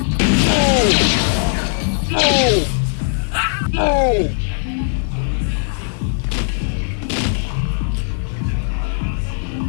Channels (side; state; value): right; silent; digital silence